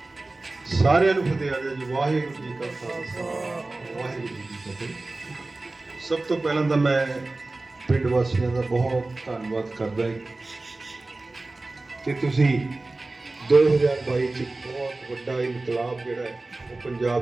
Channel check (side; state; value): left; quieter; 3.1 dB